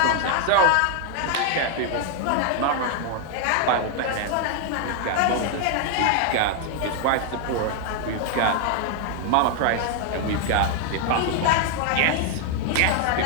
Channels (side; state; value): both; different; correlation 0.00